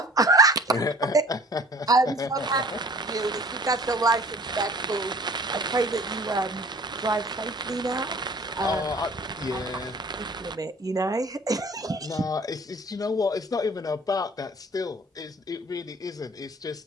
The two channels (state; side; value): normal; both; correlation 0.49